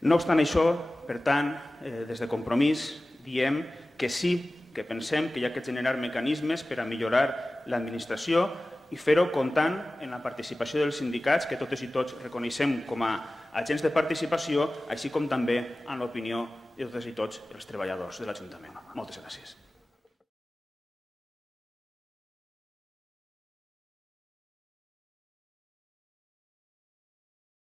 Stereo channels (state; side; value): normal; both; correlation 0.97